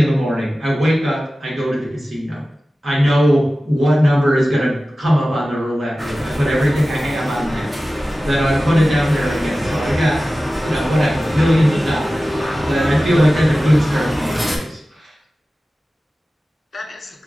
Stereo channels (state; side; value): normal; both; correlation 0.96